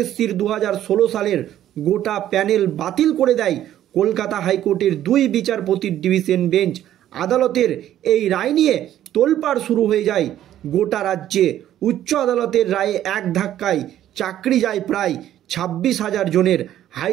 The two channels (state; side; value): quieter; left; 12.0 dB